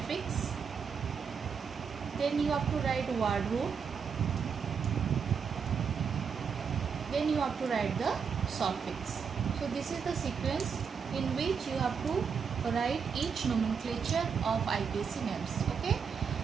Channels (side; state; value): left; quieter; 6.4 dB